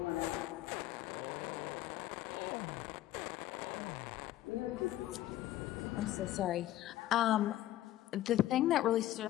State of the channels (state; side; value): quieter; right; 14.3 dB